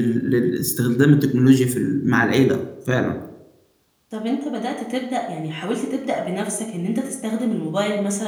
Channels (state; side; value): identical; both; correlation 1.00